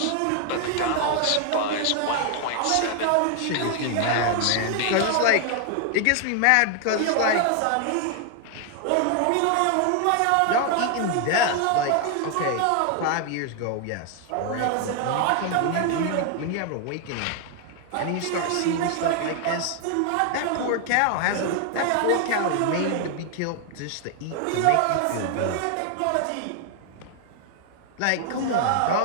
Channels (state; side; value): different; both; correlation 0.00